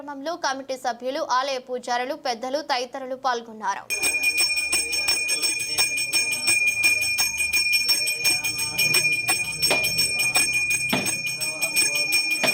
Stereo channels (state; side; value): identical; both; correlation 1.00